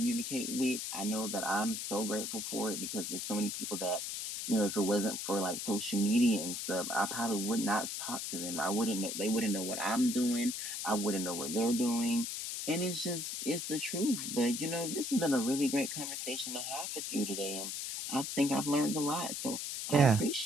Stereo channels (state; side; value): noise; left; hiss, 4 dB below the sound